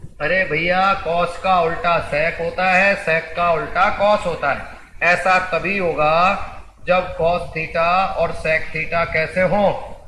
अरे भैया कॉस का उल्टा सेक होता है, सेक का उल्टा कॉस होता है। ऐसा तभी होगा जब कॉस थीटा और सेक थीटा कैसे हो,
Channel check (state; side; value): identical; both; correlation 1.00